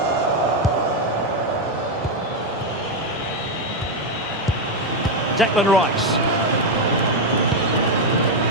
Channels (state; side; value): normal; both; correlation 0.04